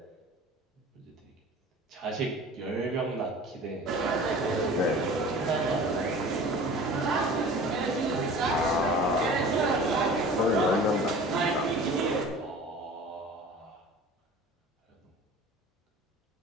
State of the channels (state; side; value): normal; both; correlation 0.42